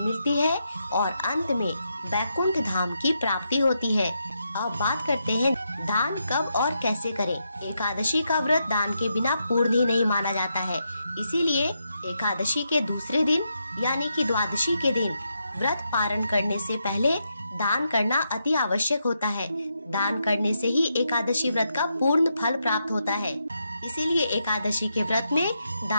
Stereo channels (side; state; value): both; inverted; correlation -0.82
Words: मिलती है और अंत में वैकुंठ धाम की प्राप्ति होती है। अब बात करते हैं दान कब और कैसे करें। एकादशी का व्रत दान के बिना पूर्ण ही नहीं माना जाता है, इसीलिए एकादशी के दूसरे दिन यानी कि द्वादशी के दिन व्रत पारण करने से पहले दान करना अति आवश्यक होता है। दान करने से ही एकादशी व्रत का पूर्ण फल प्राप्त होता है। इसीलिए एकादशी के व्रत में